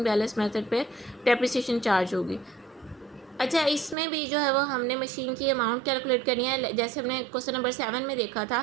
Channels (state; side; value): drops out; left; at 4.0 s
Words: बैलेंस मेथड पे डेप्रिसिएशन चार्ज होगी। अच्छा, इसमें भी जो है वो हमने मशीन की अमाउंट कैलकुलेट करनी है, जैसे हमने क्वेश्चन नंबर 7 में देखा